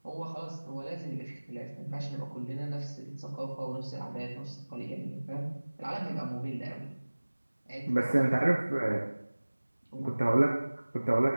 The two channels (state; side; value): inverted; both; correlation -1.00